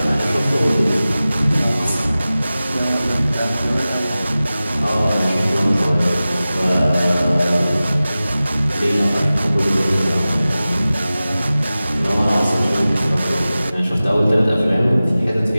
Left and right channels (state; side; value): inverted; both; correlation -0.96